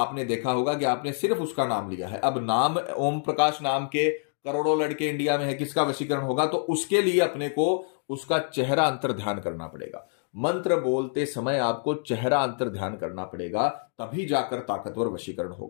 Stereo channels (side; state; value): right; silent; 60 dB below the other